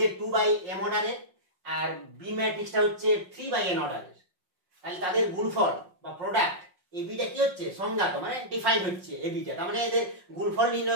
2/m অর্ডারের, আর বি ম্যাট্রিক্সটা হচ্ছে 3/n অর্ডারের। তাহলে তাদের গুণফল বা প্রোডাক্ট এবিটা কি হচ্ছে, সংজ্ঞাত মানে ডিফাইন হচ্ছে এবিটা, তার মানে এদের গুণফল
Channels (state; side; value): late; left; 5.6 ms